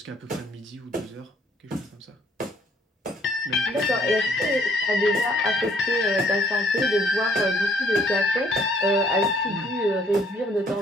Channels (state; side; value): normal; both; correlation 0.64